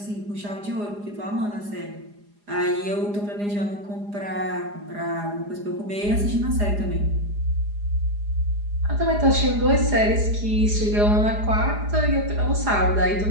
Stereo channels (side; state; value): left; late; 4.9 ms